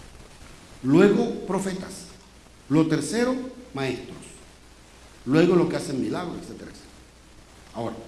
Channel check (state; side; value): identical; both; correlation 1.00